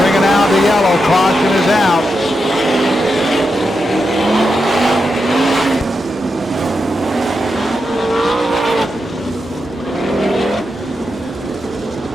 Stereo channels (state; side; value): normal; both; correlation 0.87